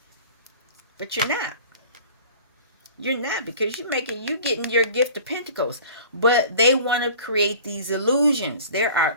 But you're not. You're not, because you getting your gift of pentacles. But they want to create these illusions. There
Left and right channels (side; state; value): both; inverted; correlation -0.44